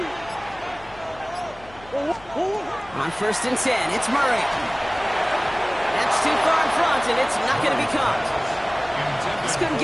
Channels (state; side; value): noise; left; hum, 22 dB below the sound